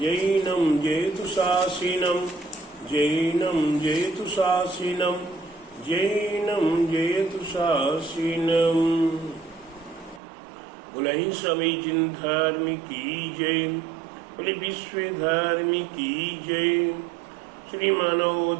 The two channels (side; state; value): left; drops out; at 10.2 s